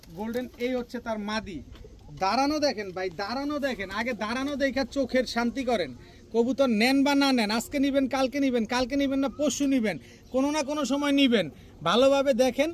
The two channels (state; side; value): identical; both; correlation 1.00